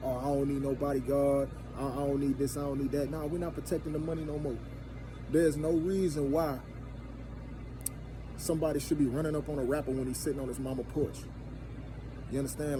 oh, I don't need no bodyguard, I don't need this, I don't need that. No, we're not protecting the money no more. There's no reason why somebody should be running up on a rapper when he's sitting on his mama porch. You understand?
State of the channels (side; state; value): both; identical; correlation 1.00